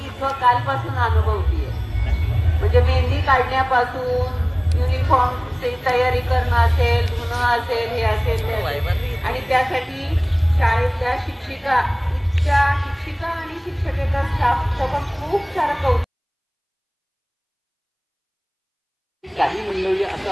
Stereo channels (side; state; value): both; identical; correlation 1.00